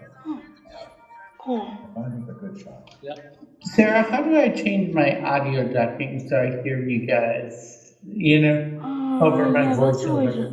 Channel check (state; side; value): identical; both; correlation 1.00